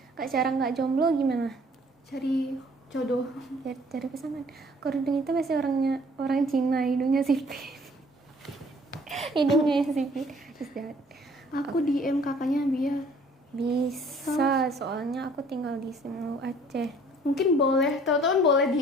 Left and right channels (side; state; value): both; normal; correlation 0.56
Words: Kak, cara nggak jomblo gimana? Cari jodoh. Cari pasangan. Kerudung itu pasti orang Cina, hidungnya sipit. Hidungnya yang sipit. Terus jahat. Aku DM kakaknya biar Bisa, soalnya aku tinggal di Semu Aceh. mungkin boleh, teman-teman boleh